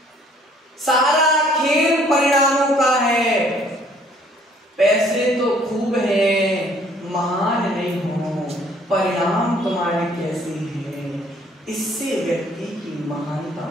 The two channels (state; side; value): normal; both; correlation 0.60